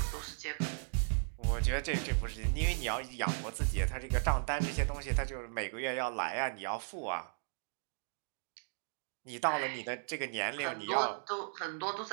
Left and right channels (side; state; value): left; silent; 54 dB below the other